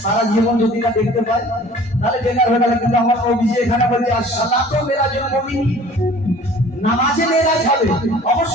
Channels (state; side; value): normal; both; correlation 0.48